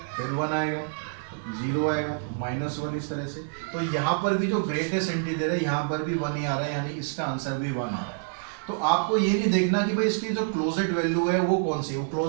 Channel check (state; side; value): silent; left; digital silence